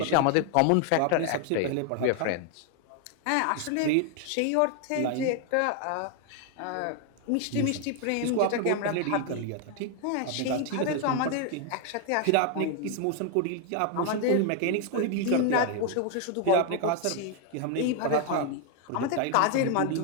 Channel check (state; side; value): different; both; correlation 0.00